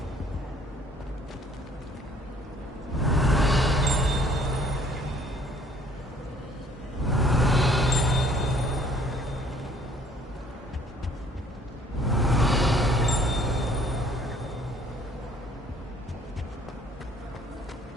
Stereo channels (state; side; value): normal; both; correlation 0.59